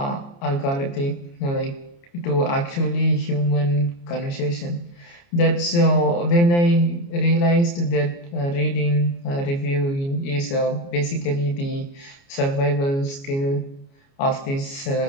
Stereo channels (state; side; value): late; right; 29 ms